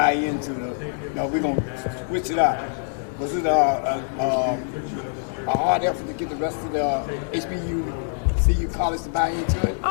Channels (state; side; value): silent; right; digital silence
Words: into we're going to switch it out? Was it a hard effort to get the rest of the HBCU college to buy into it?